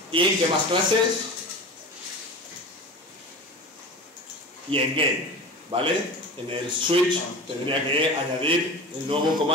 y ¿en qué más clases? Y en game, ¿vale? En el switch tendría que añadir el nuevo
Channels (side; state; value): both; normal; correlation 0.33